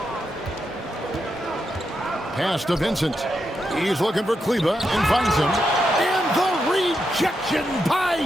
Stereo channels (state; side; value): normal; both; correlation 0.84